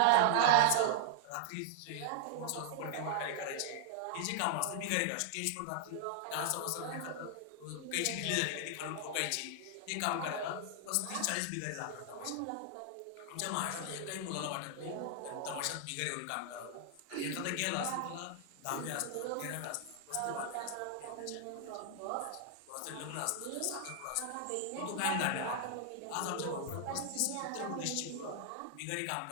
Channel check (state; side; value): different; both; correlation 0.00